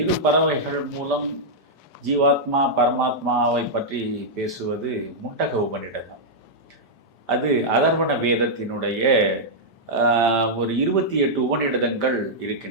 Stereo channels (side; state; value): both; normal; correlation -0.07